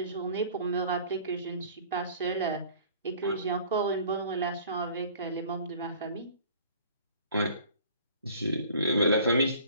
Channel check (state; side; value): inverted; both; correlation -0.50